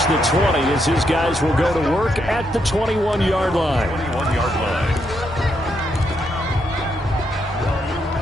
the 20 as his guys will go to work at the 21-yard line. 21-yard line.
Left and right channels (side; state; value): both; normal; correlation 0.79